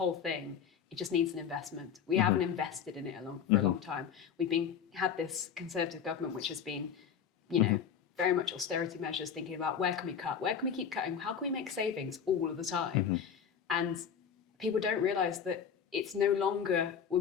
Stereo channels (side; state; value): right; quieter; 7.7 dB